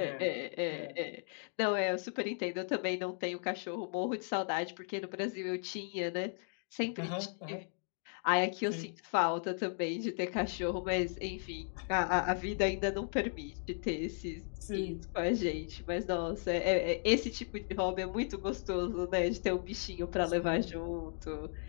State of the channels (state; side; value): silent; right; 54 dB below the other